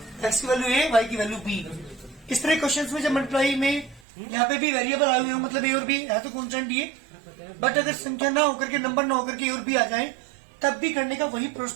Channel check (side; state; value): left; drops out; at 4.0 s